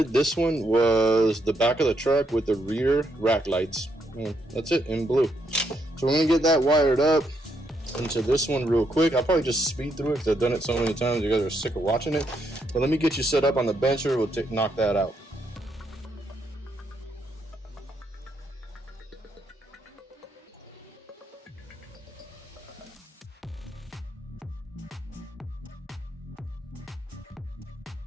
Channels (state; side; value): normal; both; correlation 0.77